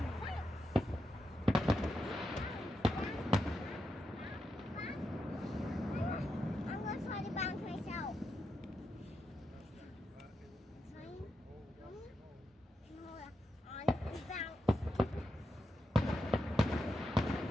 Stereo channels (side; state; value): both; normal; correlation 0.86